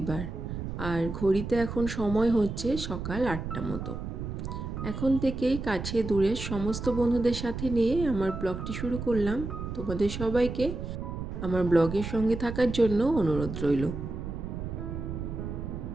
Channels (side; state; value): right; noise; rumble, 6 dB below the sound